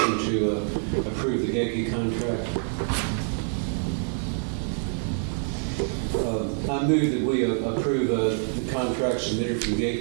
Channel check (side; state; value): left; silent; digital silence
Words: to approve the Gakey contract? I move that we approve the contract submitted from